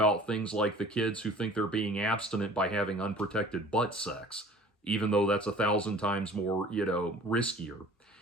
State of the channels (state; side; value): normal; both; correlation 0.47